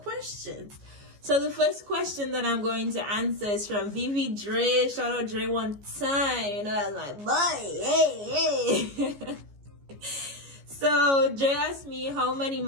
So the first question that I'm going to answer is from Vivi Dre. Shout out Dre one time. You know, that's my boy. Hey. So Dre asked me how many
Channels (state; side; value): late; left; 14 ms